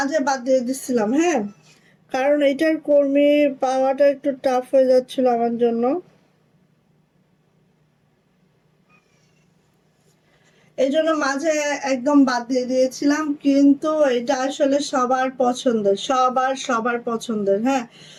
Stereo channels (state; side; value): identical; both; correlation 1.00